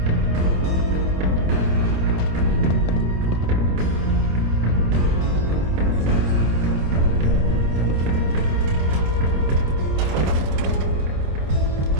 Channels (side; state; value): left; late; 27 ms